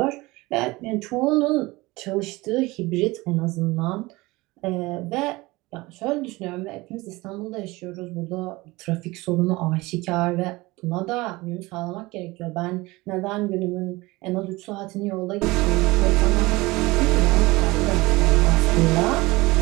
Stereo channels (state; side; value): quieter; left; 21.6 dB